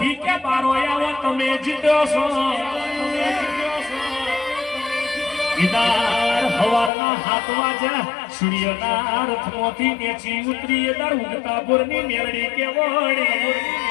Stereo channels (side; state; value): right; drops out; at 6.9 s